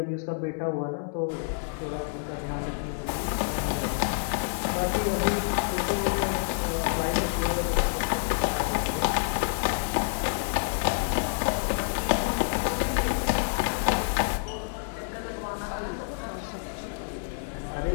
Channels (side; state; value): right; silent; 59 dB below the other